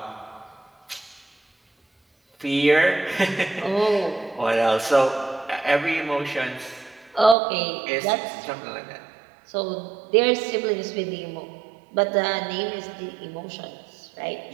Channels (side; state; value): left; drops out; at 7.4 s